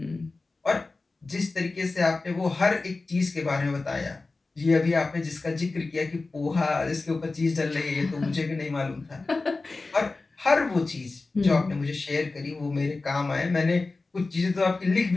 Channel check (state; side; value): quieter; right; 3.6 dB